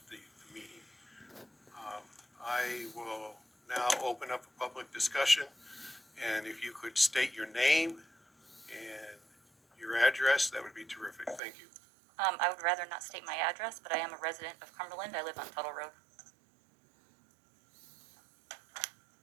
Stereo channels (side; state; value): left; drops out; at 11.4 s